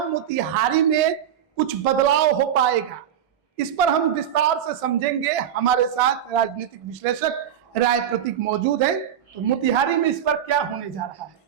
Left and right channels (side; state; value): left; quieter; 9.7 dB